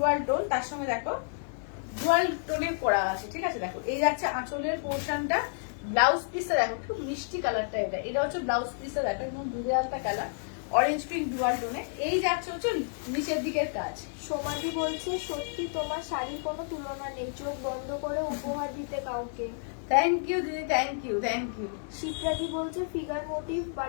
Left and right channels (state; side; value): silent; right; digital silence